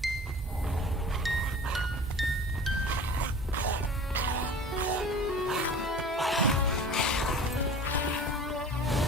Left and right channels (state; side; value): normal; both; correlation 0.41